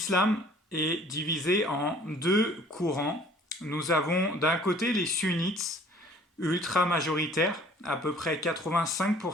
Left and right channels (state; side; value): normal; both; correlation 0.53